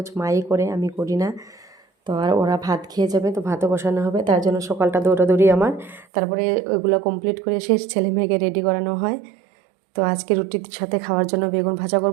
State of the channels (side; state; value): left; drops out; at 6.1 s